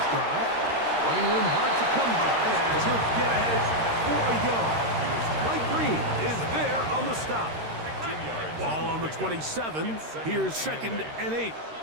drive. Running room hard to come by as he'll get ahead for a yard. Mike Green is there on the stop. Ball on the 27. Here's 2nd and 8.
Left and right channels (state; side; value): late; left; 13 ms